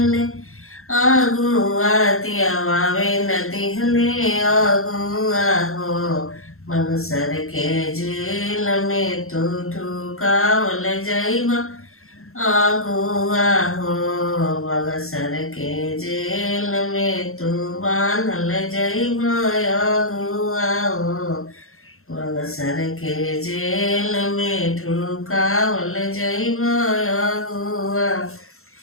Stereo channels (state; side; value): late; right; 0.62 ms